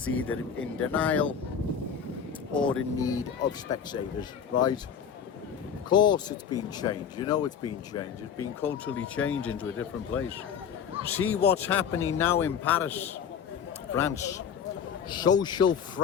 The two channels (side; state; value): right; quieter; 7.6 dB